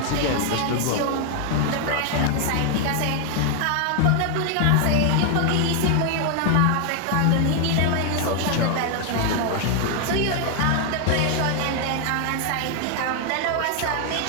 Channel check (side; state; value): both; different; correlation 0.00